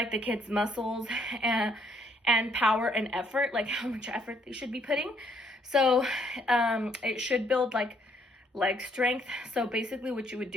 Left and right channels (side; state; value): both; normal; correlation 0.69